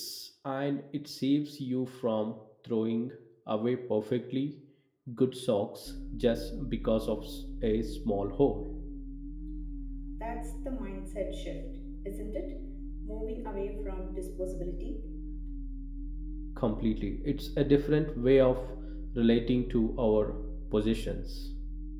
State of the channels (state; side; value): identical; both; correlation 1.00